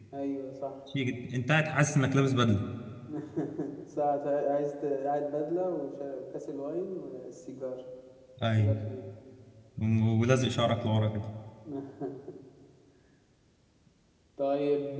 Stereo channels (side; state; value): both; identical; correlation 1.00